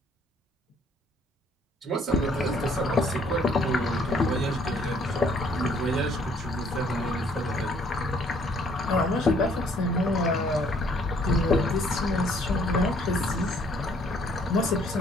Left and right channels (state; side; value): normal; both; correlation 0.62